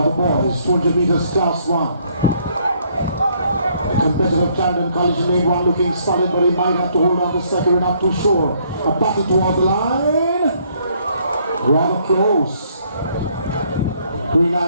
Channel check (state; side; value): inverted; both; correlation -0.67